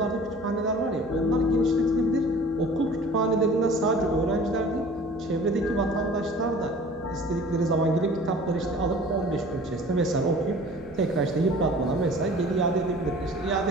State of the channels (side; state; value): right; noise; hum, 23 dB below the sound